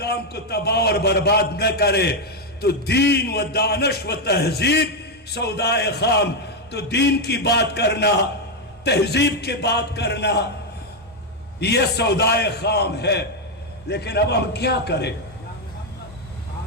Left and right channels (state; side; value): normal; both; correlation 0.03